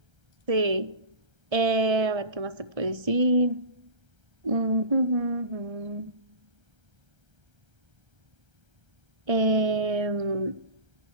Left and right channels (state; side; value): late; left; 1.3 ms